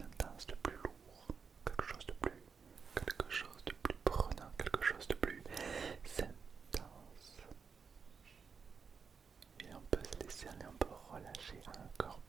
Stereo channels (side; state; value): left; quieter; 5.8 dB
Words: de plus lourd, quelque chose de plus prenant, quelque chose de plus intense. Et on peut se laisser aller, on peut relâcher encore